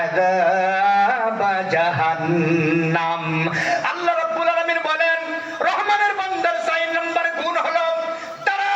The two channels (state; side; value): identical; both; correlation 1.00